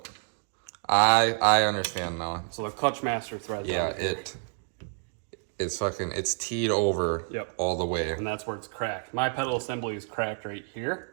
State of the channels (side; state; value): left; silent; digital silence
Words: I understand now. So the clutch master thread. Yeah, it's teed over all the way. And that's where it's cracked. My pedal assembly is cracked right